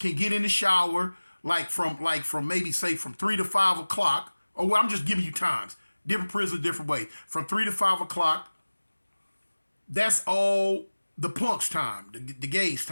get in the shower, like from maybe say from 3 to 5 o'clock. Or well, I'm just giving you times. Different prisons, different ways. From 3 to 5 o'clock, that's all the punks' time, the gays'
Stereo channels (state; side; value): inverted; both; correlation -1.00